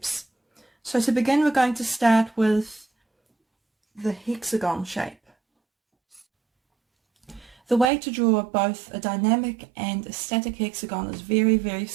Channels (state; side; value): drops out; left; at 7.9 s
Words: So to begin, we're going to start with the hexagon shape. The way to draw both a dynamic and a static hexagon is very